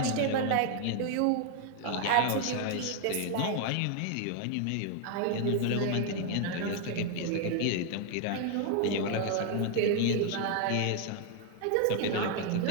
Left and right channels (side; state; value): both; different; correlation 0.00